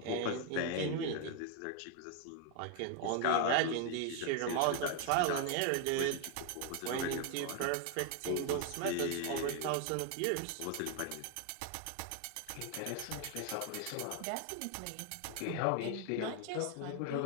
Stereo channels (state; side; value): different; both; correlation 0.01